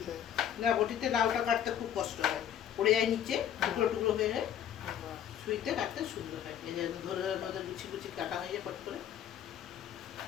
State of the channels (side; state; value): right; quieter; 10.0 dB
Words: না, বটিতে লাউটা কাটতে খুব কষ্ট হয়, পড়ে যায় নিচে, টুকরো টুকরো হয়ে যায়। ছুরিতে কাটতে সুন্দর হয়, এই যে ধরে ধরে গুছি গুছি কাটা হয়ে যায় পট করে।